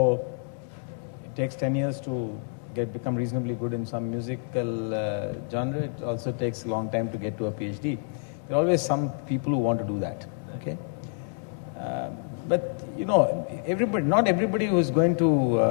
it takes 10 years to become reasonably good in some musical genre. It also takes a long time to get to a PhD. There are always some people who want to do that. Okay, but not everybody who is going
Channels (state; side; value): silent; right; 60 dB below the other